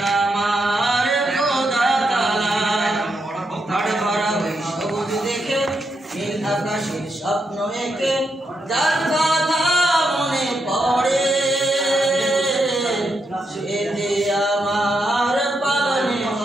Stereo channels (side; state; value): both; normal; correlation 0.82